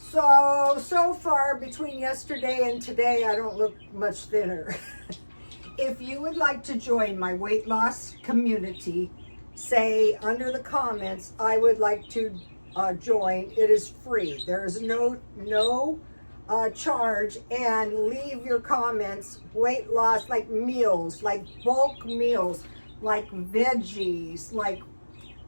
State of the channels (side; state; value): both; inverted; correlation -1.00